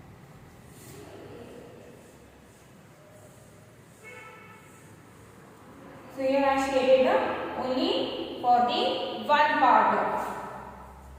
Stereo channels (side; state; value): both; identical; correlation 1.00